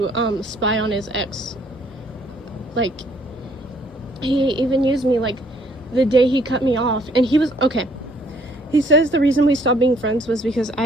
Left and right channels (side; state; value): both; normal; correlation 0.64